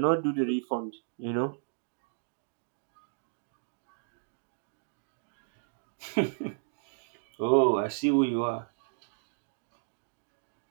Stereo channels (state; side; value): silent; left; digital silence